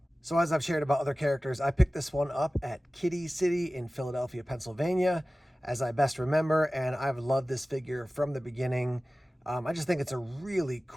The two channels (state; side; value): normal; both; correlation 0.97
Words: So as I've shared about other characters, I picked this one up at Kitty City in Philadelphia, Pennsylvania, as I best remember, and I've loved this figure from the beginning. I just think it's a really